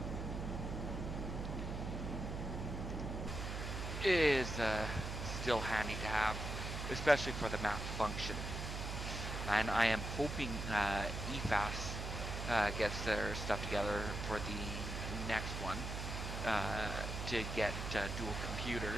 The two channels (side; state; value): right; noise; hum, 4 dB below the sound